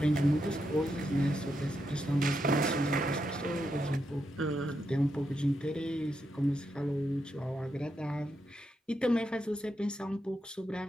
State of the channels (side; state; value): both; normal; correlation 0.83